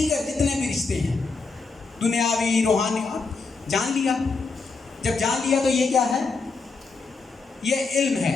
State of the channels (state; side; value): quieter; right; 4.3 dB